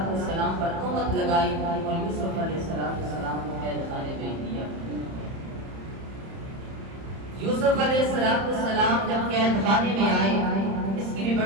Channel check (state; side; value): late; left; 30 ms